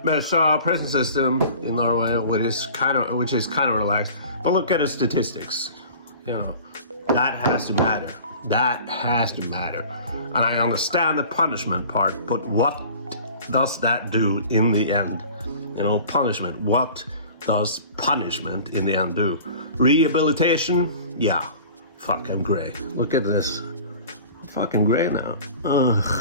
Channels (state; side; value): inverted; both; correlation -0.43